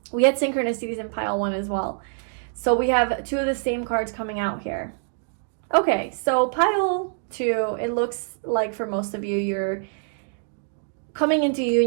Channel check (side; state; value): left; silent; digital silence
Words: We had synchronicities in pile 1 as well. So we have 2 of the same cards coming out here. Okay, so pile 2, it looks like for most of you, you're coming into